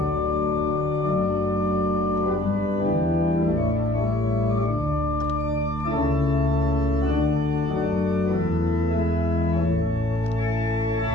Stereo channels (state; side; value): normal; both; correlation 0.56